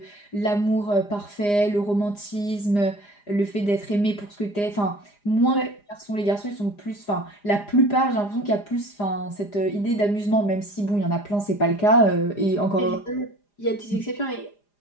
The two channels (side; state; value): right; late; 4.9 ms